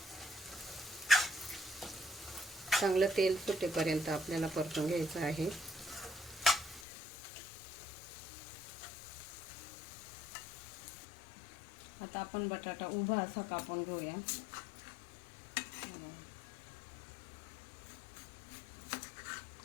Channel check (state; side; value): drops out; right; at 6.9 s